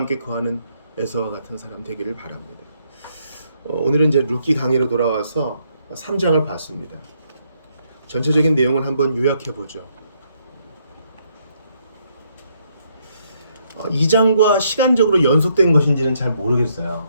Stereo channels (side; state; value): both; inverted; correlation -0.72